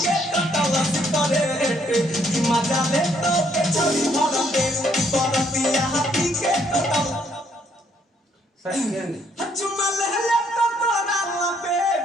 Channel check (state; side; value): normal; both; correlation 0.68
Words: मजा ले तो के छोड़ी भर पे बरतिया हाथी के टटल सच चुम्मा ले ले तो तोरा पे